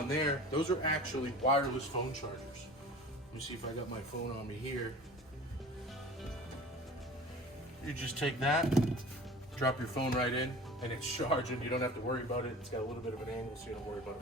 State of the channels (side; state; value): both; normal; correlation 0.40